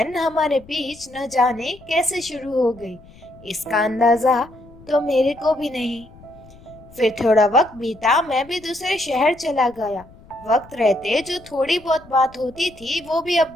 हमारे बीच न जाने कैसे शुरू हो गई, इसका अंदाजा तो मेरे को भी नहीं। फिर थोड़ा वक्त बीता, मैं भी दूसरे शहर चला गया। वक्त रहते जो थोड़ी बहुत बात होती थी वो भी अब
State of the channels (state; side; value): noise; left; rumble, 23 dB below the sound